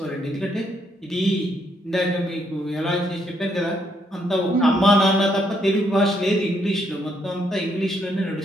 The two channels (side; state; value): both; normal; correlation 0.74